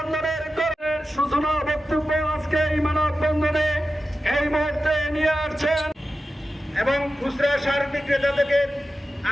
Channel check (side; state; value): both; normal; correlation 0.92